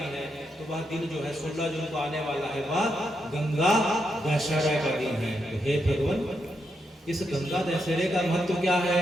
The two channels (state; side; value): normal; both; correlation 0.82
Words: है तो वह दिन जो है 16 जून को आने वाला है वह गंगा दशहरा का दिन है। तो हे भगवान इस गंगा दशहरे का महत्व क्या है?